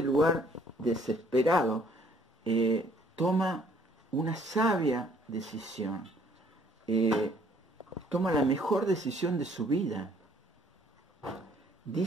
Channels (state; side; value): normal; both; correlation 0.61